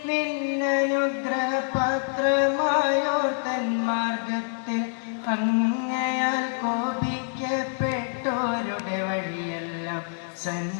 നിന്നനുഗ്രഹപാത്രമായോ തന്മാർഗത്തിൽ അങ്ങയാൽ കോപിക്കപ്പെട്ടോരുടെ വഴിയെല്ലാം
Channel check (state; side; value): silent; right; 61 dB below the other